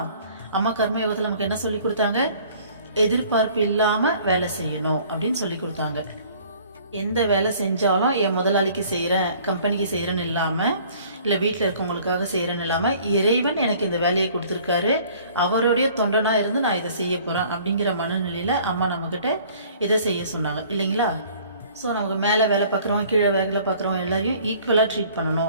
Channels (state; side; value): inverted; both; correlation -0.53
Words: அம்மா கர்ம யோகத்தில் நமக்கு என்ன சொல்லி கொடுத்தாங்க? எதிர்பார்ப்பு இல்லாமல் வேலை செய்யணும் அப்படின்னு சொல்லி கொடுத்தாங்க. எந்த வேலை செஞ்சாலும் என் முதலாளிக்கு செய்கிறேன், கம்பெனிக்கு செய்கிறேன்னு இல்லாமல், இல்லை வீட்டில் இருக்கவங்களுக்காக செய்கிறேன்னு இல்லாமல், இறைவன் எனக்கு இந்த வேலையை கொடுத்துருக்காரு, அவருடைய தொண்டனாக இருந்து நான் இதை செய்ய போகிறேன் அப்படிங்கிற மனநிலையில் அம்மா நம்மக்கிட்ட இதை செய்ய சொன்னாங்க இல்லைங்களா? ஸோ நமக்கு மேலே வேலை பார்க்குறவங்க கீழே வேலை பார்க்குறவங்க எல்லாரையும் ஈக்குவலாக ட்ரீட்